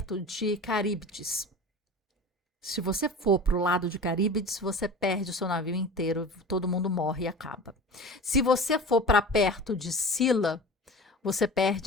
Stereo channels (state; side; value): normal; both; correlation 0.36